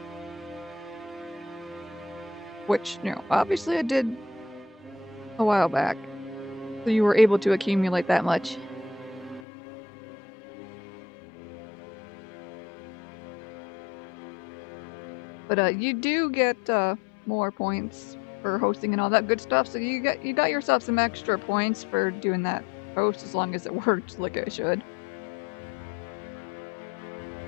Which, you know, obviously I did a while back. So you were able to accumulate that much. But you do get more points for hosting and all that good stuff, so you got yourself some extra points for doing that host as long as it worked like it should.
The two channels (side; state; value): right; drops out; at 9.4 s